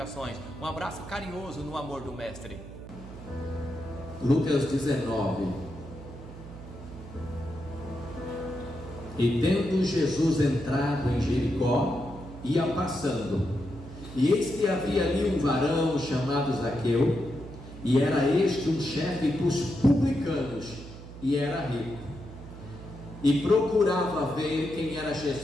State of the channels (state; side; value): noise; right; hum, 14 dB below the sound